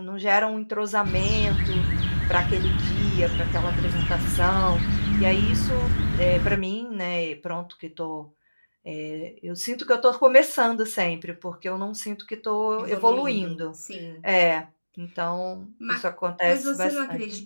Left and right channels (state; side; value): inverted; both; correlation -1.00